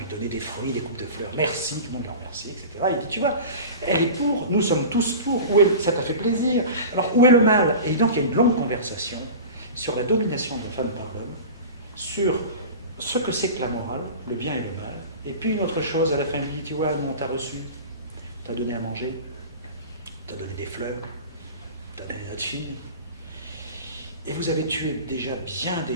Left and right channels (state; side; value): inverted; both; correlation -0.34